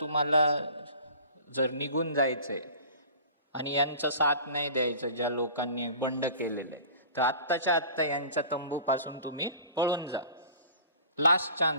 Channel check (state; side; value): inverted; both; correlation -0.43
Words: तुम्हाला जर निघून जायचंय आणि यांचा साथ नाही द्यायचं ज्या लोकांनी बंड केलेले, तर आत्ताच्या आत्ता यांच्या तंबूपासून तुम्ही पळून जा. लास्ट